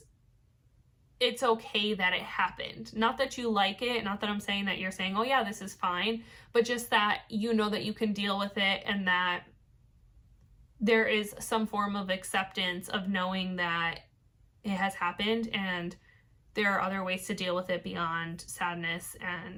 okay that it happened. Not that you like it, not that I'm saying that you're saying, oh yeah, this is fine, but just that you know that you can deal with it, and that there is some form of acceptance of knowing that it has happened, and there are other ways to deal with it beyond sadness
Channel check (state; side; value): identical; both; correlation 1.00